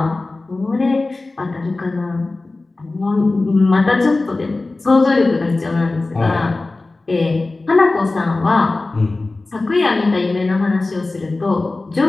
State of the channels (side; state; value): right; quieter; 3.3 dB